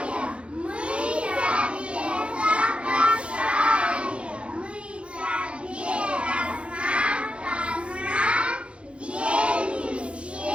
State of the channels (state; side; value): late; left; 0.059 ms